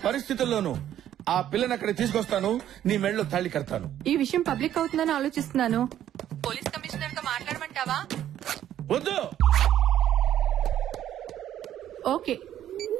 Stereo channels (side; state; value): left; quieter; 11.3 dB